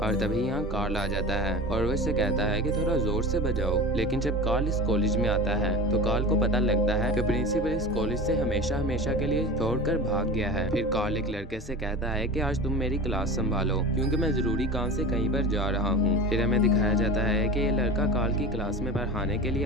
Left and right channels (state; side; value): normal; both; correlation 0.32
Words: तभी यहाँ कार्ल आ जाता है और वो इससे कहता है कि थोड़ा जोर से बजाओ। लेकिन जब कार्ल इस कॉलेज में आता है तो कार्ल को पता लगता है कि प्रिंसिपल इस कॉलेज से हमेशा हमेशा के लिए छोड़कर भाग गया है। फिर कार्ल एक लड़के से कहता है कि आज तुम मेरी क्लास संभालो, क्योंकि मैं जरूरी काम से कहीं पर जा रहा हूँ। फिर हमें दिखाया जाता है कि ये लड़का कार्ल की क्लास में पढ़ाने के लिए